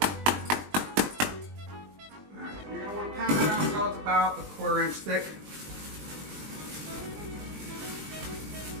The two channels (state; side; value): late; left; 20 ms